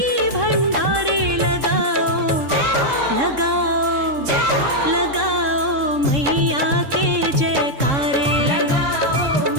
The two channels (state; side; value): late; left; 3.7 ms